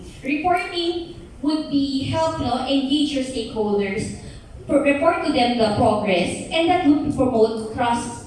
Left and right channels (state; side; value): identical; both; correlation 1.00